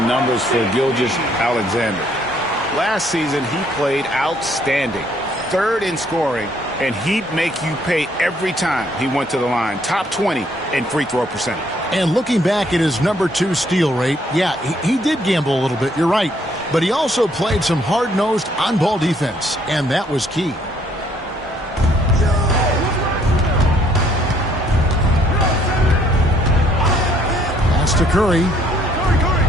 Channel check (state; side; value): normal; both; correlation 0.66